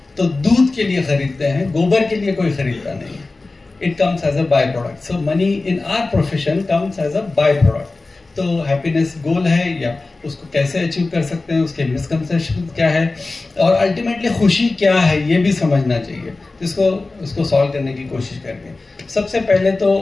तो दूध के लिए खरीदते हैं, गोबर के लिए कोई खरीदता नहीं है। It comes as a by product. So money in our profession comes as a by product. तो हैप्पीनेस गोल है या उसको कैसे अचीव कर सकते हैं, उसके मिसकंसेप्शन क्या है और अल्टीमेटली खुशी क्या है, ये भी समझना चाहिए। जिसको उसको सॉल्व करने की कोशिश करेंगे। सबसे पहले तो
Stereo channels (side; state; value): right; quieter; 3.4 dB